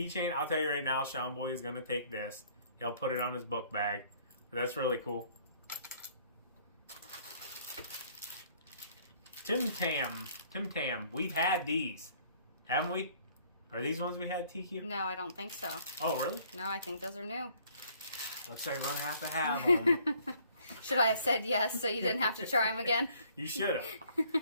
I'll tell you right now, Sean Boy is going to take this. He'll put it on his book bag. That's really cool. Tim Tam. We've had these. Haven't we? Are these ones we had, TQ? No, I don't think so. Oh, really? No, I think those are new. Looks like we're going to have them. Should I have said yes so you didn't have to try them again? You should have.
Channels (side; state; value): both; inverted; correlation -0.60